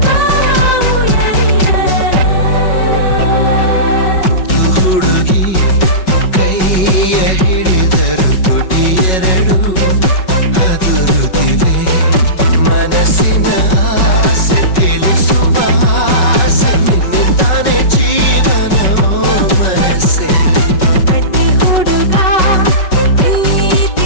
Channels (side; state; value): right; late; 5.3 ms